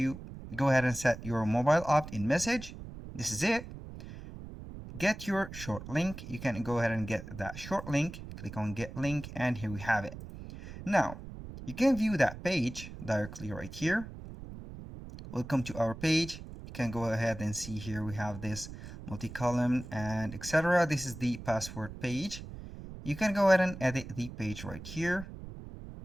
go ahead and set your mobile opt-in message. This is it. Get your short link. You can go ahead and get that short link. Click on get link, and here we have it. Now, you can view that page directly right here. Welcome to our page. You can go ahead and see here we have this multi-column and etc. This is the password page. You can go ahead and edit the page right here.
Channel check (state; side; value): noise; right; rumble, 12 dB below the sound